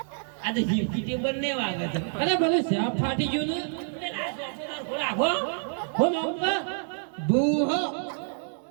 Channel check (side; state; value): left; silent; 60 dB below the other